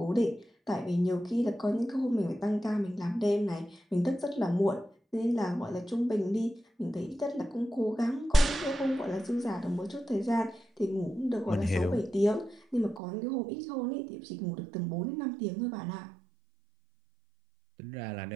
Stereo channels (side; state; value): left; drops out; at 13.0 s